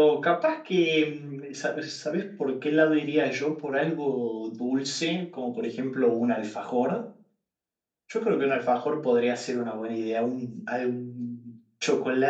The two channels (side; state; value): both; identical; correlation 1.00